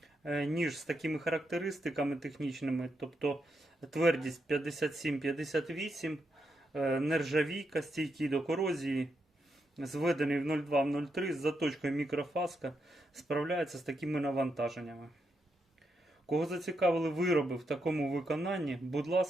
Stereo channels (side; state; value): both; normal; correlation 0.83